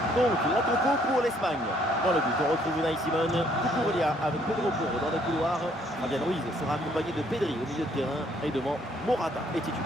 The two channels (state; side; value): normal; both; correlation 0.65